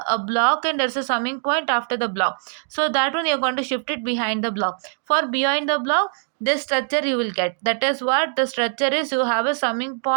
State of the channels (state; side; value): silent; left; digital silence